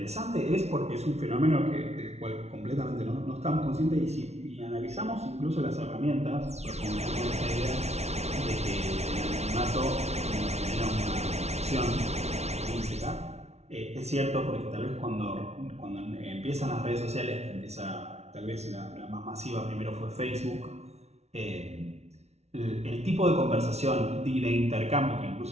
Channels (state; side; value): late; left; 0.31 ms